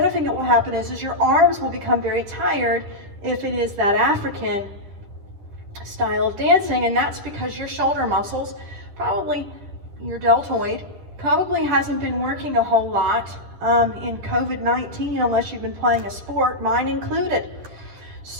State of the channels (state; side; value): late; left; 10 ms